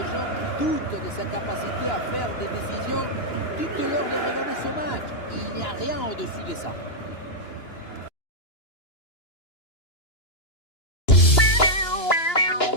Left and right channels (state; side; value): late; right; 2.9 ms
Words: gens qui doutent de sa capacité à faire des décisions, dites-leur de regarder ce match. Il n'y a rien au-dessus de ça.